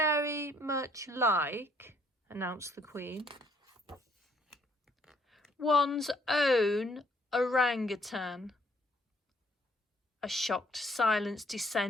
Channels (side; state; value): both; normal; correlation 0.65